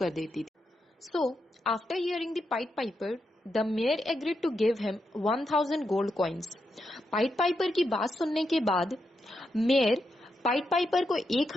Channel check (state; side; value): normal; both; correlation 0.84